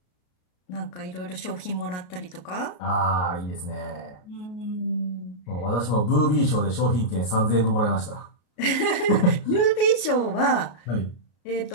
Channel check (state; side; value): late; right; 33 ms